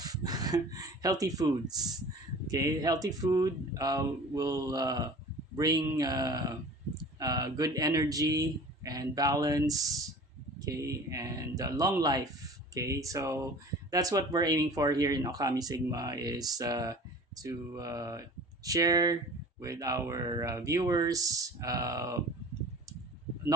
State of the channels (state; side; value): normal; both; correlation 0.42